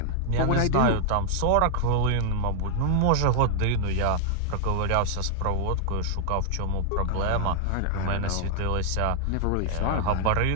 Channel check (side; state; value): both; different; correlation 0.00